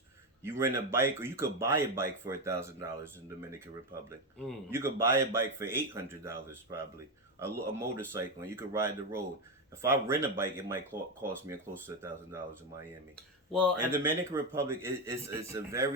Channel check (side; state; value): both; normal; correlation 0.10